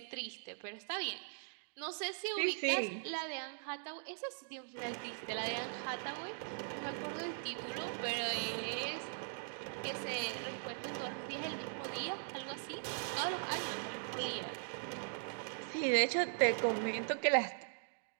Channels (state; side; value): silent; left; digital silence